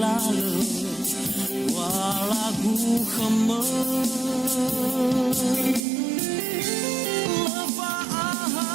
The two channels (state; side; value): drops out; left; at 5.9 s